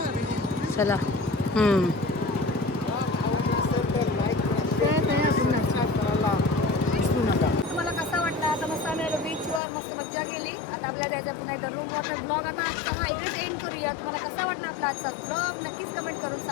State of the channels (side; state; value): right; drops out; at 9.6 s